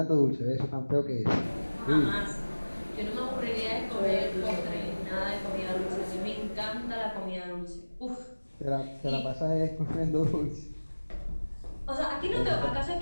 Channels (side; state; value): both; inverted; correlation -1.00